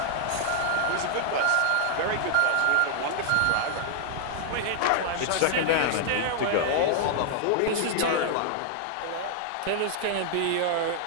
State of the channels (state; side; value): different; both; correlation -0.01